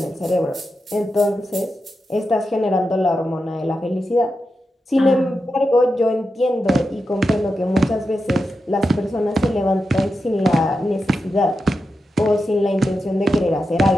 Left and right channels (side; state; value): both; normal; correlation 0.89